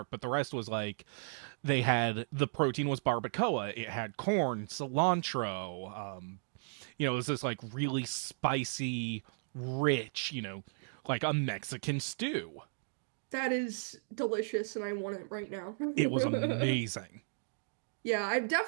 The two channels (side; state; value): left; silent; digital silence